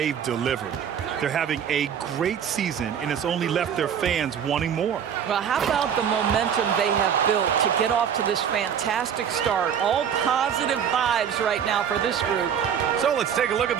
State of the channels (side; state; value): left; quieter; 8.3 dB